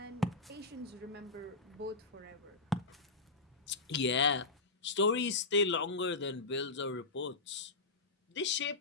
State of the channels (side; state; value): right; quieter; 3.6 dB